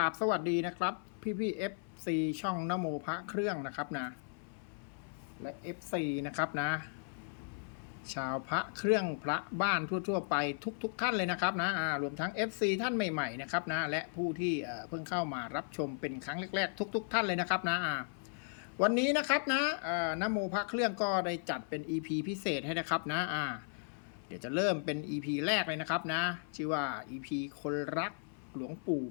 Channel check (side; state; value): right; silent; 54 dB below the other